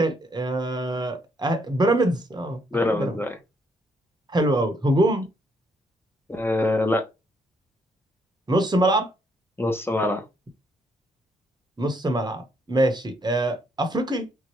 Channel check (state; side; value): normal; both; correlation 0.72